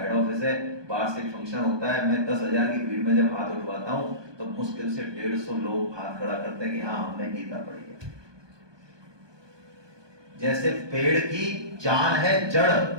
ऑफिस है, वार्षिक फंक्शन होता है, मैं 10,000 की भीड़ में जब हाथ उठवाता हूं तो मुश्किल से 150 लोग हाथ खड़ा करते हैं कि हाँ हमने गीता पढ़ी है। जैसे पेड़ की जान है जड़,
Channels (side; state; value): left; late; 1.2 ms